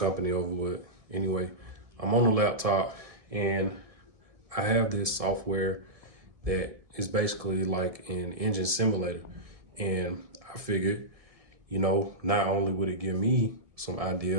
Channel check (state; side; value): late; left; 1.7 ms